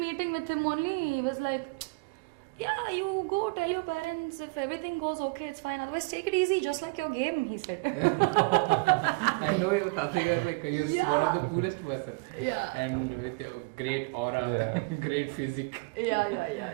meeting with him only, he was like, yeah, you go tell your parents if everything goes okay, it's fine, otherwise take it easy, just like your game, he said. I know your Tataya is like, you're one of the coolest person. Yeah. And with your great aura, great physique.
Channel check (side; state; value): left; quieter; 26.8 dB